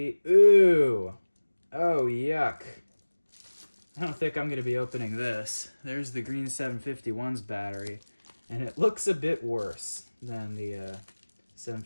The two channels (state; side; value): inverted; both; correlation -1.00